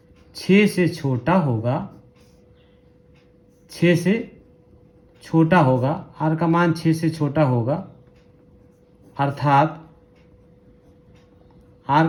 6 से छोटा होगा। 6 से छोटा होगा। r का मान 6 से छोटा होगा अर्थात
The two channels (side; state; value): both; identical; correlation 1.00